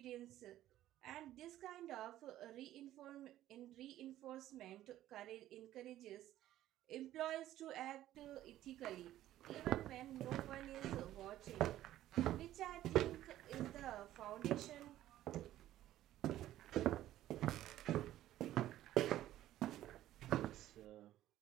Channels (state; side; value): quieter; left; 13.6 dB